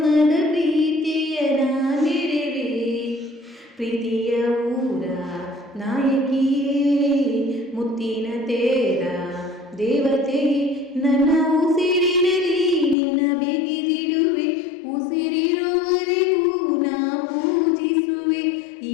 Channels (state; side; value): drops out; right; at 13.0 s